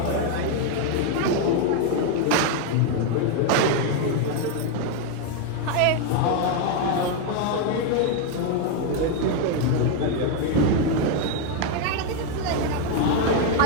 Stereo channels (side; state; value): both; different; correlation 0.01